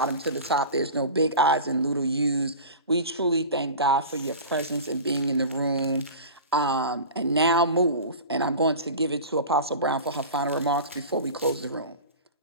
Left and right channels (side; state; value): both; inverted; correlation -0.33